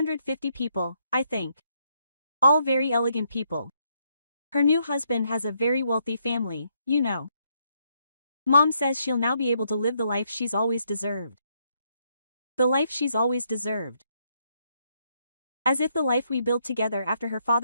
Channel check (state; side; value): inverted; both; correlation -0.74